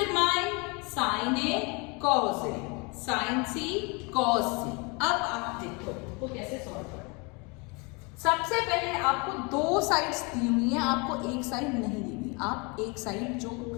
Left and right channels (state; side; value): quieter; right; 30.0 dB